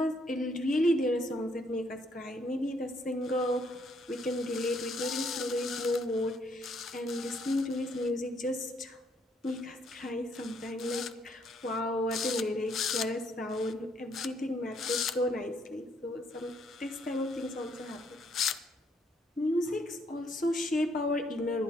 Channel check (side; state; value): both; normal; correlation 0.70